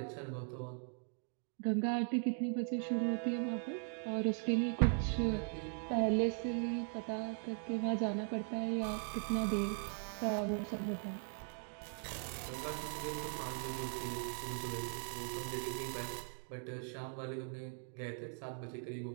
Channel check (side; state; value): left; silent; 51 dB below the other